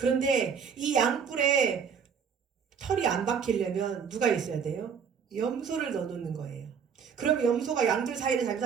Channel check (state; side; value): quieter; left; 6.8 dB